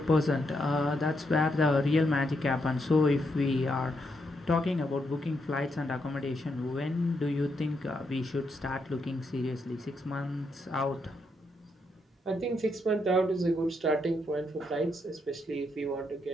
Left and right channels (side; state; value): both; normal; correlation 0.79